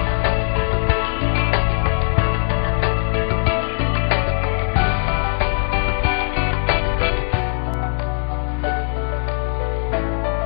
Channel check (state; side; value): silent; right; 65 dB below the other